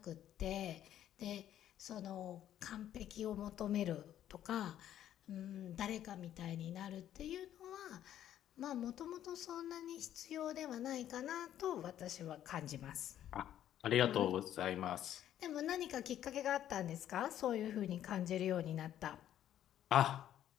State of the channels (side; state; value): right; quieter; 11.3 dB